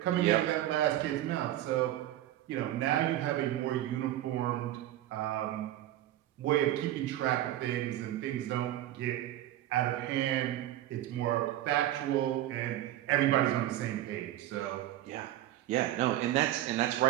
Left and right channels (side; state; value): left; quieter; 13.7 dB